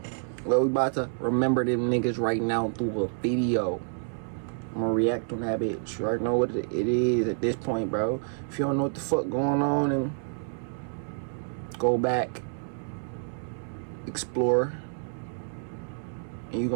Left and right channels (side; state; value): left; silent; digital silence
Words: Well, we about to remember them niggas right now through a video. I'm gonna react on that bitch. You already know what it is at this point, bro. If you don't know what the fuck going on, and go back, explore, and you